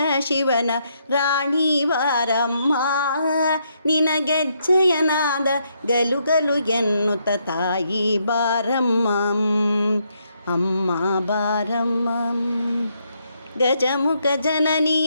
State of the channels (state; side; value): inverted; both; correlation -0.76